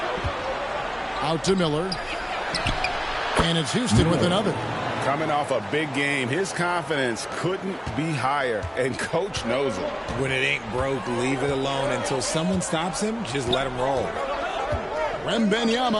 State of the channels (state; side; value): identical; both; correlation 1.00